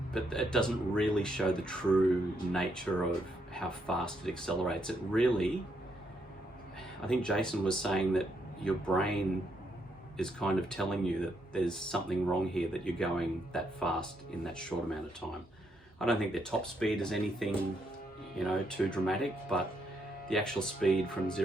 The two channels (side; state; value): both; normal; correlation 0.77